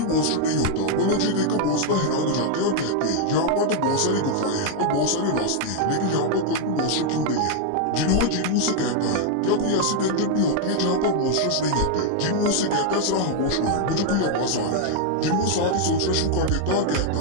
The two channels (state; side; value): different; both; correlation 0.00